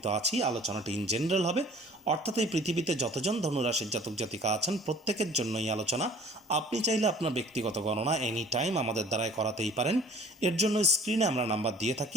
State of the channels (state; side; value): normal; both; correlation 0.50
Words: তো আছি, আলোচনাটি ইন জেনারেল হবে, অর্থাৎ এই পৃথিবীতে যতজন ধনুরাশির জাতক জাতিকা আছেন প্রত্যেকের জন্যই আলোচনা। আপনি চাইলে আপনার ব্যক্তিগত গণনা এনি টাইম আমাদের দ্বারাই করাতেই পারেন। এর জন্য স্ক্রিনে আমরা নাম্বার দিয়ে